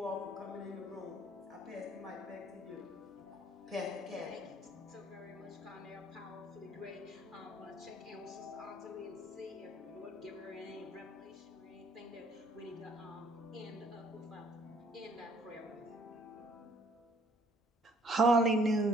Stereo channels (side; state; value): both; normal; correlation 0.61